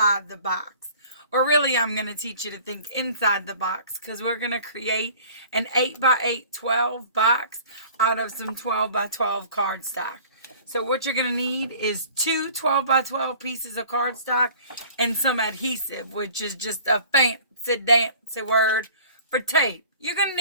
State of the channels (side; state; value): both; inverted; correlation -0.47